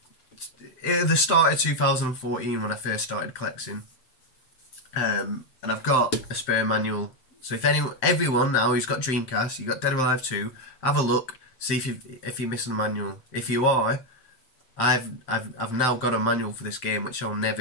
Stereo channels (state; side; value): late; right; 7.7 ms